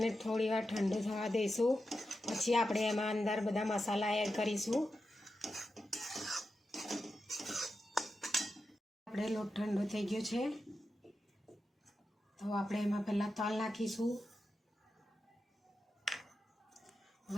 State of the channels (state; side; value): normal; both; correlation 0.89